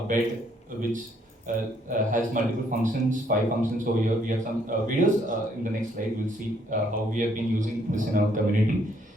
bed which has multiple functions, 5 functions over here. We have some videos in the next slide. We'll see how we have been using this in our community.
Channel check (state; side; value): normal; both; correlation 0.68